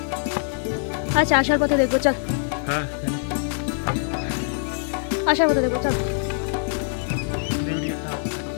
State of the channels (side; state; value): right; silent; 63 dB below the other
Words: আচ্ছা, আসার পথে দেখবো, চল। আসার পথে দেখবো, চল।